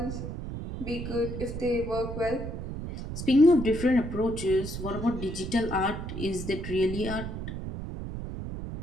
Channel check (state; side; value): noise; right; rumble, 7 dB below the sound